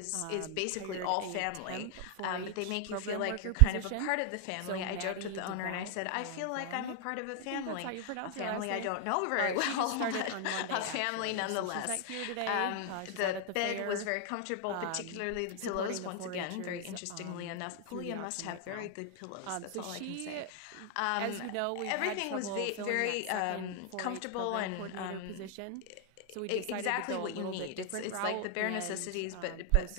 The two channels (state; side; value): different; both; correlation 0.00